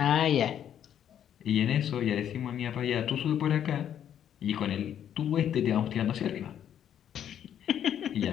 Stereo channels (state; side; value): quieter; right; 9.8 dB